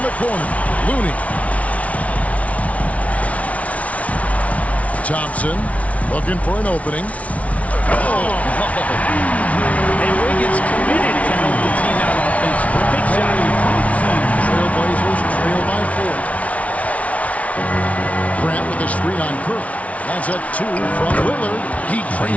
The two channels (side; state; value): right; late; 0.066 ms